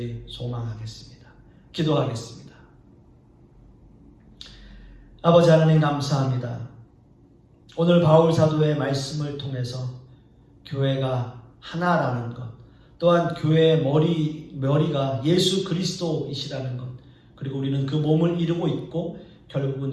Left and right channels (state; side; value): identical; both; correlation 1.00